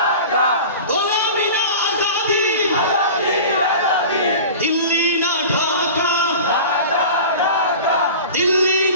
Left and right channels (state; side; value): inverted; both; correlation -0.36